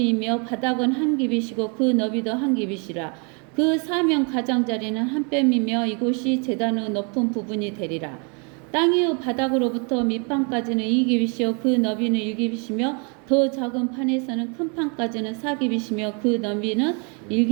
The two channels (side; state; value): left; quieter; 35.4 dB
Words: 바닥은 한 규빗이고 그 너비도 한 규빗이라. 그 사명 가장자리는 한 뼘이며 이곳이 제단의 높은 부분이 되리라. 땅의 바닥으로부터 밑판까지는 2규빗이요 그 너비는 1규빗이며 더 작은 판에서는 큰 판까지는 4규빗이며 그 너비는